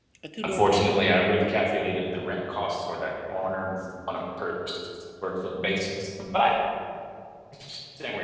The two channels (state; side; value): identical; both; correlation 1.00